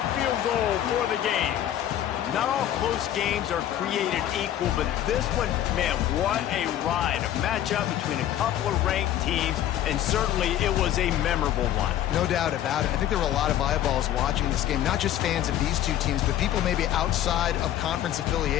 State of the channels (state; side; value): quieter; right; 11.9 dB